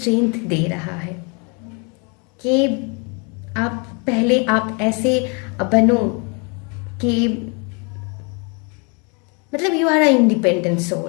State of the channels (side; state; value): right; quieter; 34.1 dB